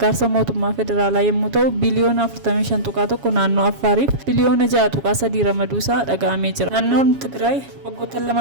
mootummaa federaalaa yommuu ta'u biliyoona 45.1 naannoo Affaariif biliyoona 6.3 ramaduusaa dhaga'amee jira. Naannoon Tigraay waggoota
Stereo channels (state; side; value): late; left; 7.2 ms